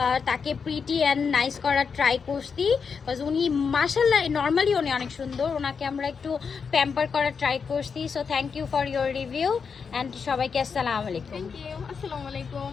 তাকে প্রিটি অ্যান্ড নাইস করার ট্রাই করছি, বিকজ উনি মাশাল্লাহ নর্মালি উনি অনেক সুন্দর। ওনাকে আমরা একটু প্যাম্পার করার ট্রাই করছি। So thank you for your review and সবাইকে আসসালামু আলাইকুম। Thank you. আসসালামু আলাইকুম।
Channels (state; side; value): quieter; right; 5.8 dB